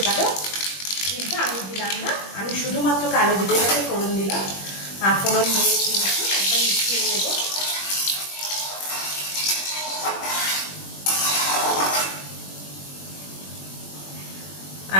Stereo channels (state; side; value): late; right; 21 ms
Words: পারো, কিন্তু আমি দিলাম না। আমি শুধুমাত্র কালো জিরেটাকে ফোড়ন দিলাম, আর ফোড়ন দিয়ে কিন্তু একদম মিশিয়ে নেব।